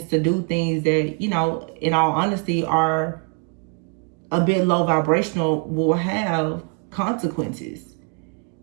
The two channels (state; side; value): quieter; left; 37.0 dB